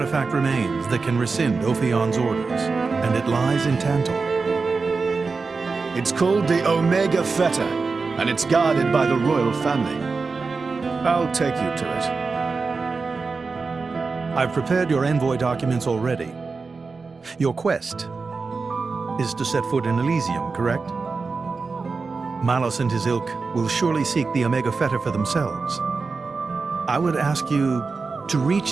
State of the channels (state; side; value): quieter; left; 4.4 dB